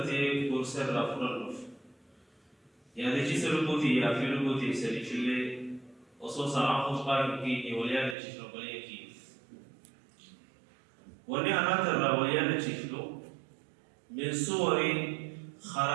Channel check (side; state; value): left; drops out; at 8.2 s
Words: كورسر رافور النف يعني شيسا ربوتي يا في ربوتي سري شلي وصوصا عقوص قائم كيني وليانا شيسا رباني كيف وني أنا ترى وليانا شيسلو من صور